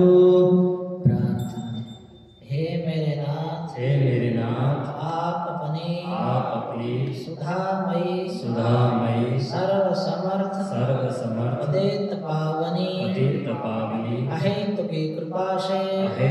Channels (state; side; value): identical; both; correlation 1.00